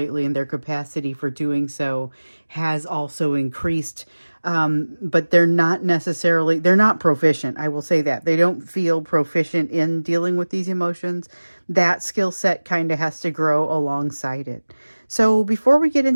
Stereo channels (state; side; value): inverted; both; correlation -1.00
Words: and their capacity for doing so has also increased. But they're not proficient. I will say that. They don't feel proficient in dealing with these emotions. That skill set kind of has to grow alongside it. So before we get